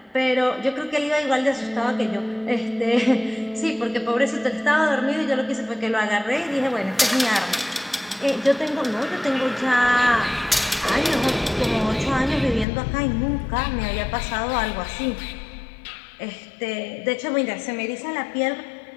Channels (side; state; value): right; drops out; at 12.7 s